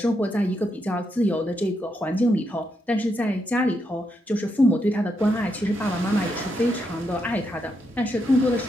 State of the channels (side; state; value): both; normal; correlation 0.81